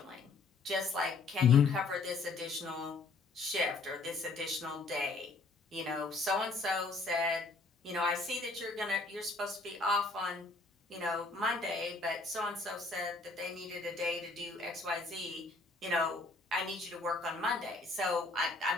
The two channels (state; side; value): quieter; right; 3.7 dB